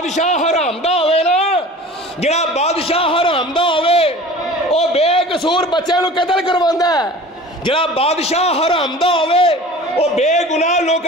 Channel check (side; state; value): both; normal; correlation 0.41